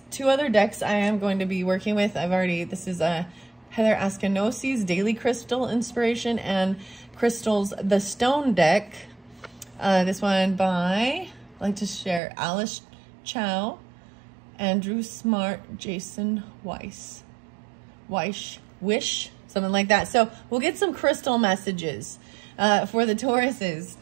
Two other decks I am going to be working with. This is a Heather Askanosi's Daily Crystal Inspiration and Crystals The Stone deck. This one by, I like to share, Alice Chow, Andrew Smart, Jason Wish, something like that. So we'll get some crystal messages for the Tauruses.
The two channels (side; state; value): left; drops out; at 12.2 s